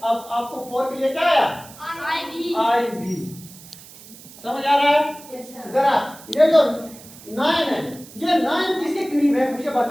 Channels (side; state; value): right; noise; hiss, 19 dB below the sound